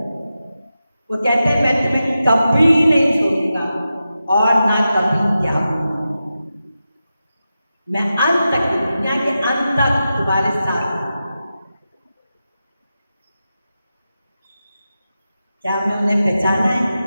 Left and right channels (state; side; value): inverted; both; correlation -0.91